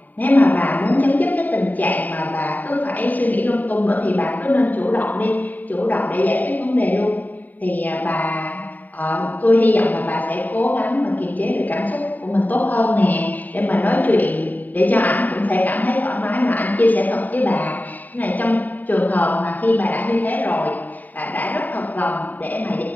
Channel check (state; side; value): late; right; 0.084 ms